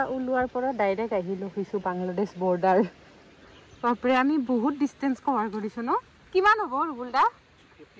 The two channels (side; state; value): both; identical; correlation 1.00